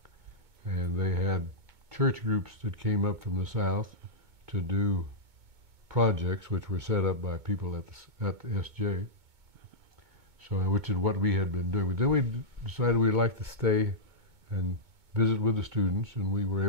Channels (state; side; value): late; left; 2.2 ms